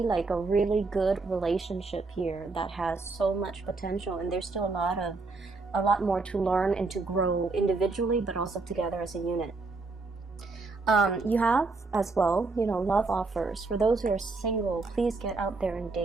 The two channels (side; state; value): left; quieter; 3.8 dB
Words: like a really good relationship here that has so much potential, and there's still a lot more to learn and to grow individually, but also together as a unit. You have as well, you know, love offers. For those who are single, please get out there and